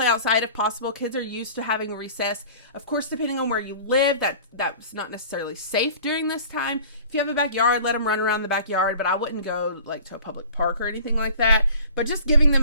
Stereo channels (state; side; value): inverted; both; correlation -0.45